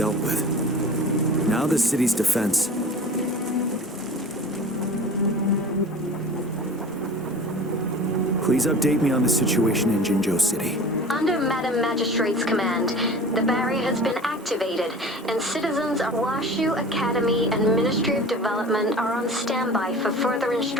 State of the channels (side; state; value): both; normal; correlation 0.39